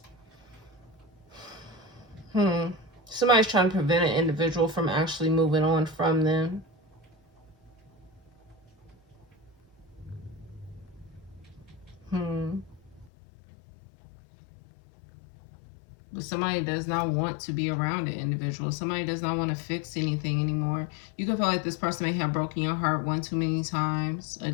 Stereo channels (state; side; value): drops out; right; at 13.1 s